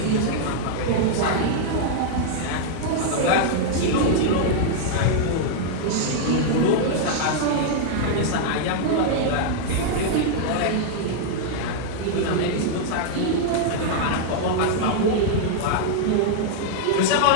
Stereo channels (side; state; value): both; different; correlation -0.01